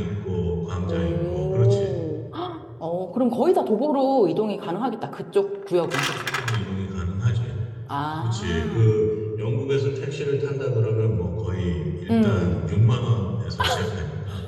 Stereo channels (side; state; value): both; identical; correlation 1.00